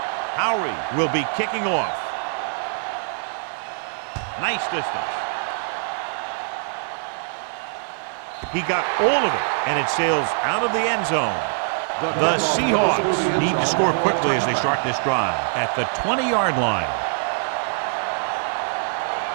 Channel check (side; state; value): left; silent; 59 dB below the other